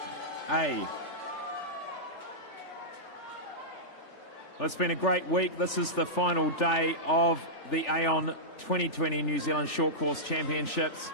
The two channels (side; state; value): right; late; 3.4 ms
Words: A. Well, it's been a great week. This is the final day of the Aon 2020 New Zealand Short Course Championships.